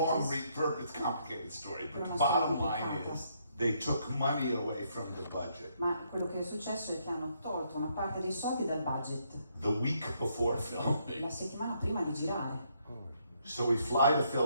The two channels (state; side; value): inverted; both; correlation -0.73